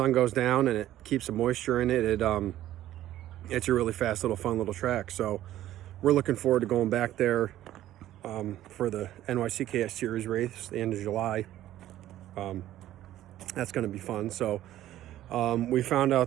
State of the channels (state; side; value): quieter; left; 13.4 dB